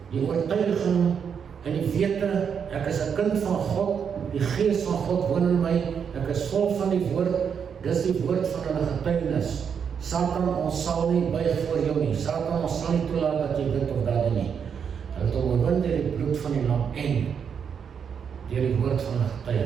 die oortuiging en die wete, ek is 'n kind van God, die gees van God woon in my, ek is vol van die woord, dis die woord van hulle getuienis. Satan, ons sal nie buig voor jou nie. Satan, ons sal nie toelaat dat jy dit of dat doen nie. Hulle het hom oorwin deur die bloed van die lam en deur die woord van hulle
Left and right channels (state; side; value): quieter; left; 7.1 dB